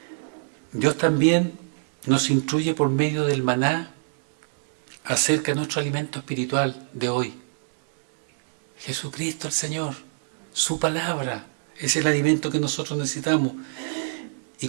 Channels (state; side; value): silent; left; digital silence